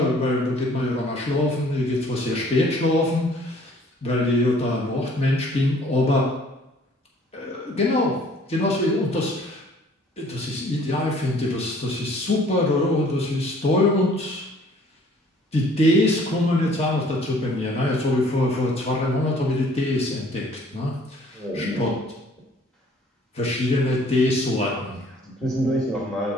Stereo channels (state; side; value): normal; both; correlation 0.56